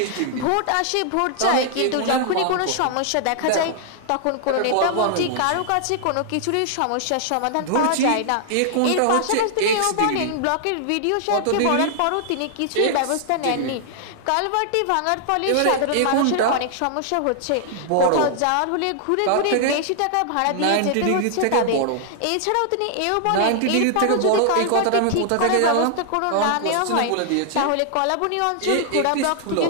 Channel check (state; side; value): different; both; correlation -0.01